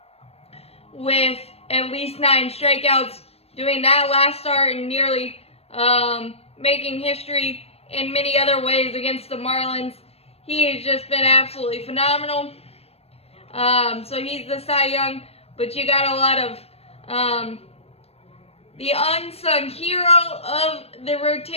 with at least 9 strikeouts, doing that last start and nearly making history in many other ways against the Marlins. He has just been absolutely phenomenal. So he's the Cy Young, but you got a lot of the unsung hero of the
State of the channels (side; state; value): right; late; 0.29 ms